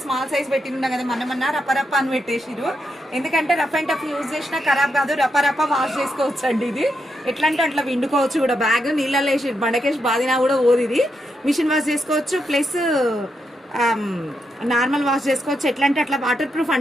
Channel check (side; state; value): both; normal; correlation 0.83